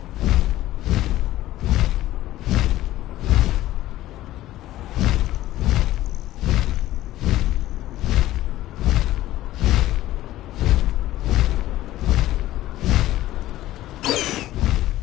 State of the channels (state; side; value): quieter; right; 15.0 dB